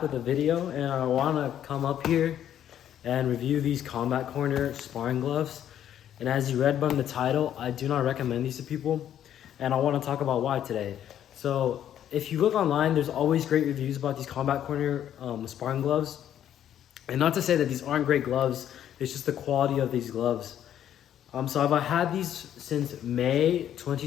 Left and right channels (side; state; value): right; quieter; 10.5 dB